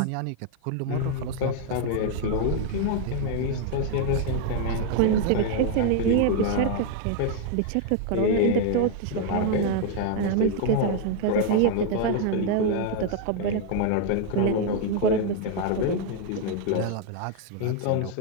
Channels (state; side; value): different; both; correlation 0.00